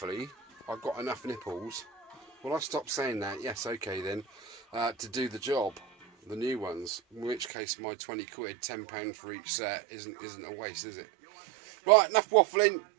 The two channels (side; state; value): left; drops out; at 7.5 s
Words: I've got enough nipples. Well, I stopped saying that. Yes, okay then. To do the job, the new ones. In which case, my 20 quid, £10 for each set, isn't a waste, is it? Right, enough waffling.